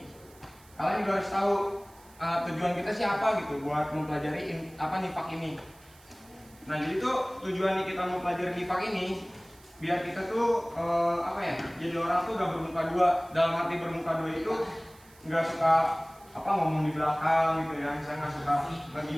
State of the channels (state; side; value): noise; right; hiss, 26 dB below the sound